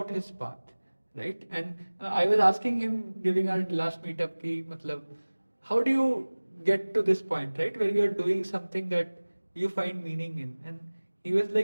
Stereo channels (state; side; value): inverted; both; correlation -1.00